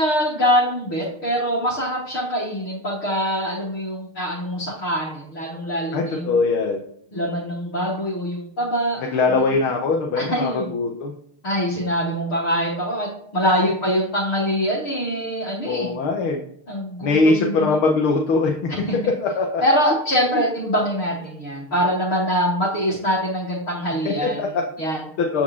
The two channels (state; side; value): late; right; 6.5 ms